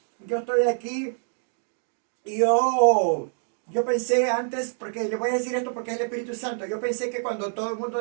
yo estoy aquí y yo pensé antes, porque le voy a decir esto porque es el Espíritu Santo, yo pensé que cuando todo el mundo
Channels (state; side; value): silent; left; 61 dB below the other